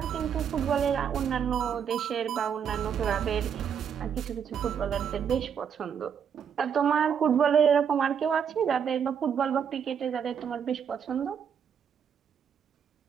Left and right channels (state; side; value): quieter; left; 7.7 dB